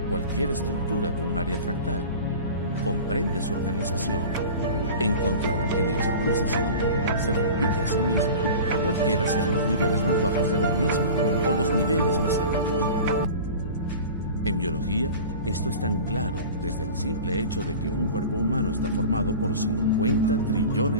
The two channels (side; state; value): both; inverted; correlation -0.36